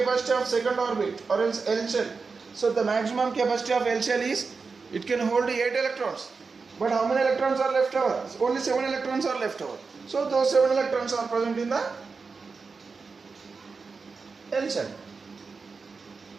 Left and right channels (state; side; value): quieter; left; 4.7 dB